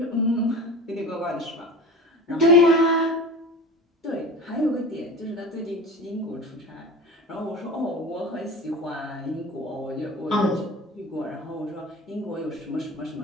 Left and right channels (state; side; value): normal; both; correlation 0.35